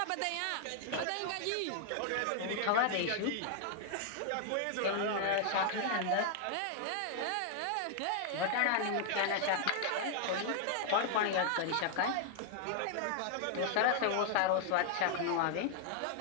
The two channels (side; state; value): both; different; correlation 0.00